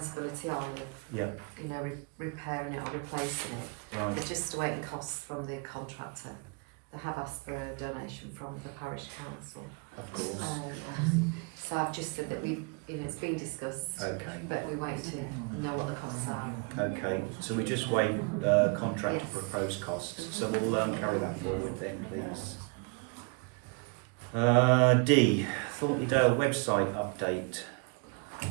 on of, Yeah. you know, repairing it or replacing it. Right. They're just awaiting costs from the contractor. They have asked for a donation from the parish council. Of course. So I've just said that it's been discussed, Okay. but we wait to know what the costs are. Okay. So we just wait contractor Yes. proposed costs. So we'll carry that forward then, please. D. Thornton Le Dale website update.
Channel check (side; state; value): left; quieter; 32.7 dB